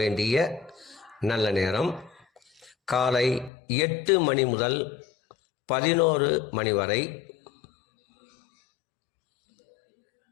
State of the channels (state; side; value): drops out; right; at 3.5 s